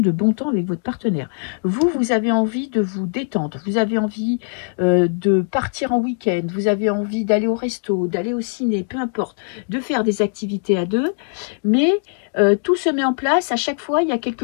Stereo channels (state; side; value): silent; right; 62 dB below the other